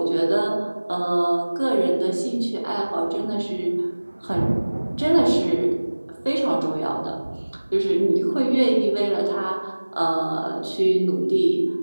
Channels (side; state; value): both; inverted; correlation -1.00